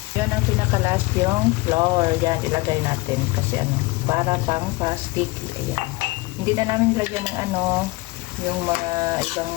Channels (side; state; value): right; quieter; 22.8 dB